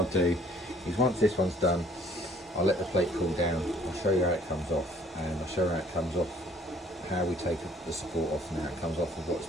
do is, once this one's done, I'll let the plate cool down. I'll show you how it comes off, and I'll show you how it comes off, how we take the support off, and how it comes off with what's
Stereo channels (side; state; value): both; normal; correlation 0.57